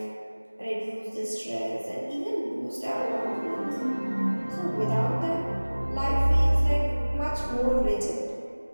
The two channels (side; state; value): both; inverted; correlation -1.00